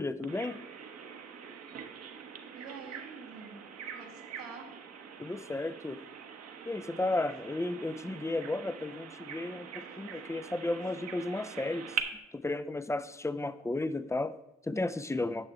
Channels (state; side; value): normal; both; correlation 0.80